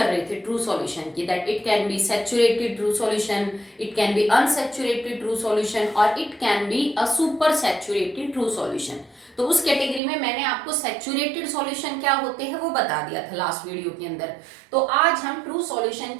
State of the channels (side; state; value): left; drops out; at 10.0 s